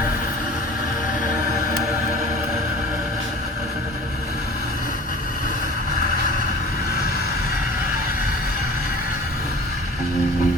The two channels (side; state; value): both; normal; correlation 0.42